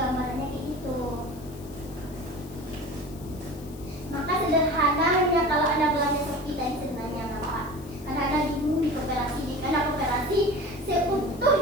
kayak gitu. Maka sederhananya kalau Anda belanja Shopee tadi sebenarnya nampak. Karena Anda bingung di koperasi, karena koperasi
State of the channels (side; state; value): left; noise; hiss, 21 dB below the sound